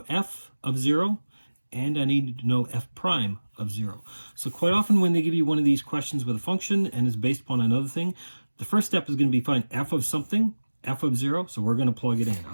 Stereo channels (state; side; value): inverted; both; correlation -1.00